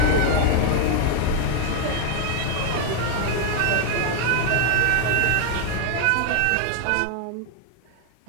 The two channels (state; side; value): different; both; correlation 0.01